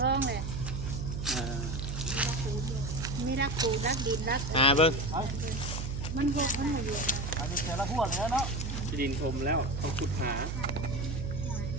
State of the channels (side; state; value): right; noise; hum, 4 dB below the sound